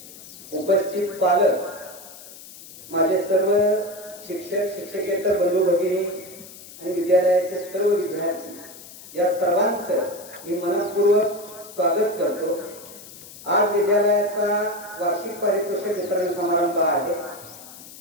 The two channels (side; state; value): left; noise; hiss, 17 dB below the sound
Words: उपस्थित पालक, माझे सर्व शिक्षक शिक्षकेतर बंधू भगिनी आणि विद्यालयाचे सर्व विद्यार्थी, या सर्वांचं मी मनपूर्वक स्वागत करतो। आज विद्यालयाचा वार्षिक पारितोषिक वितरण समारंभ आहे।